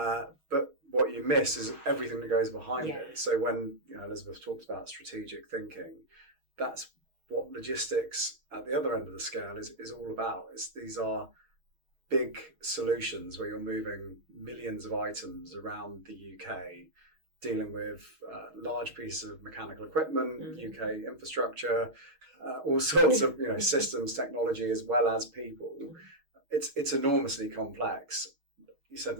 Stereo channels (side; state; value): left; late; 6.3 ms